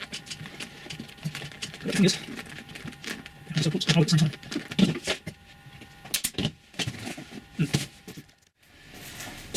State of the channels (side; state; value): both; identical; correlation 1.00